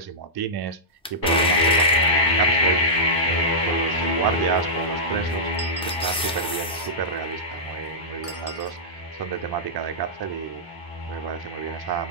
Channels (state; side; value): normal; both; correlation -0.12